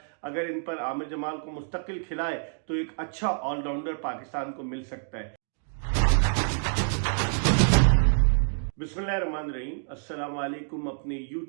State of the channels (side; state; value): left; silent; digital silence